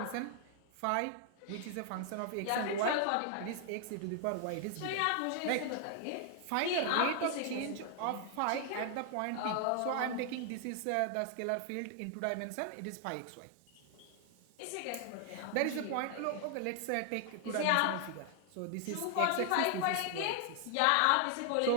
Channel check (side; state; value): both; different; correlation 0.00